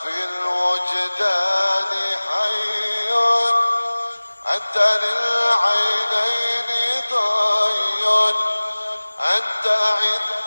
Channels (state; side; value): inverted; both; correlation -1.00